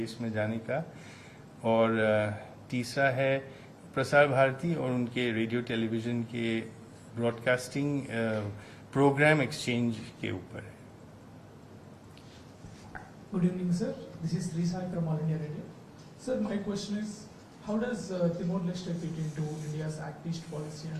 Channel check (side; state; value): both; identical; correlation 1.00